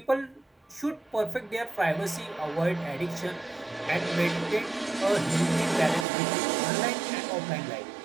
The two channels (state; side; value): drops out; left; at 6.1 s